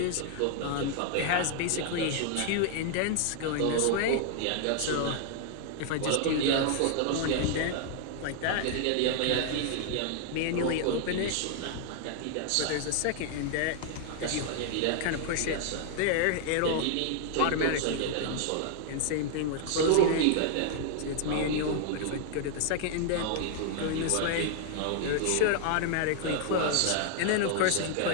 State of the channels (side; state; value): both; different; correlation 0.00